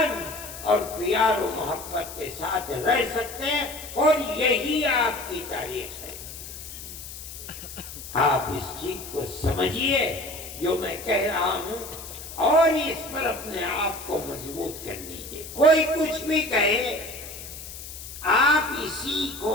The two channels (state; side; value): noise; left; hiss, 12 dB below the sound